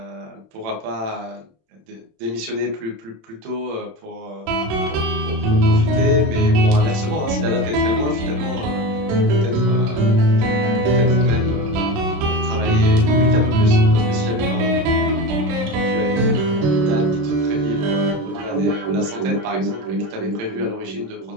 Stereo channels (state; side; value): late; left; 27 ms